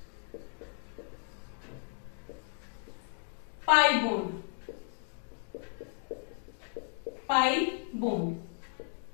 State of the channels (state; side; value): silent; right; digital silence